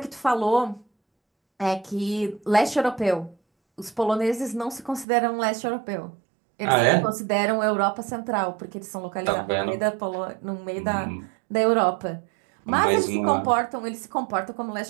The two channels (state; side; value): drops out; left; at 5.1 s